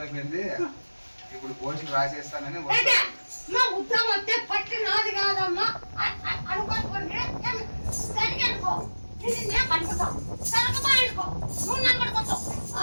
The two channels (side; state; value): both; inverted; correlation -1.00